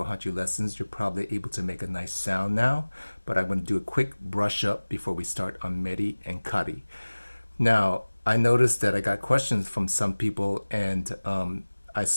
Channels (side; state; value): both; inverted; correlation -1.00